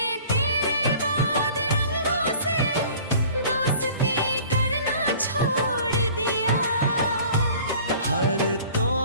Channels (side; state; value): both; inverted; correlation -0.47